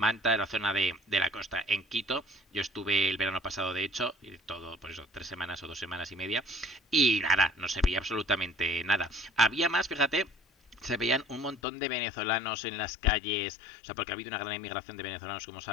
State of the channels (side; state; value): right; drops out; at 11.6 s